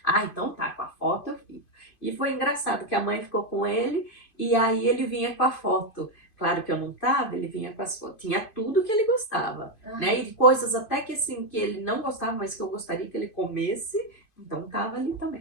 Ah, então tá, com a foto eu fico. E foi engraçado que a mãe ficou com ele, e aí ele vinha com a foto. Claro que eu não tava, ele vinha com as fotos, tinha tudo que ele gostava, né? E coisas até que assim, que ele não gostava, mas que eu gostaria que ele comesse, então tava ali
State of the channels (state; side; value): late; right; 2.5 ms